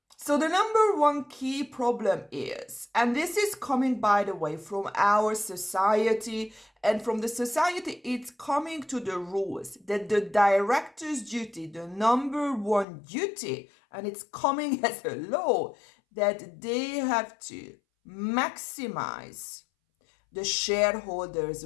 So the number one key problem is, and this is coming, by the way, from our society, and from the society, it's coming to the rules that the director's duty, the number one duty, and it's coming as a law, that they have to maximize the shareholders'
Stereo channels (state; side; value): drops out; right; at 12.9 s